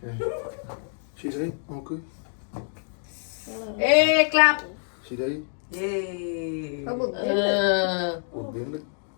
ശരിയായി നോക്ക്. ക്ലാപ്പ്. ശരിയായി. ബുദ്ധിയുണ്ട്.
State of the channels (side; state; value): right; silent; digital silence